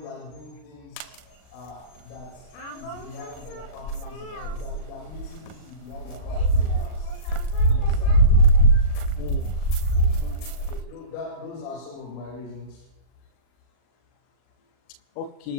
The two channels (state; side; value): late; right; 39 ms